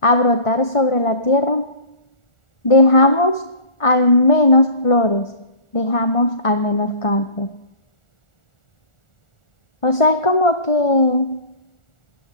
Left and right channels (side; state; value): right; late; 1.4 ms